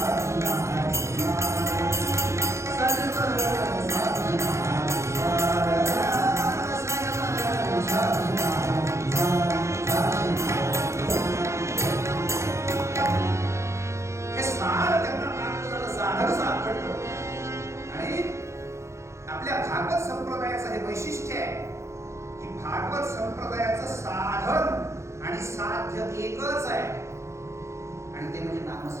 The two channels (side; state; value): left; late; 0.14 ms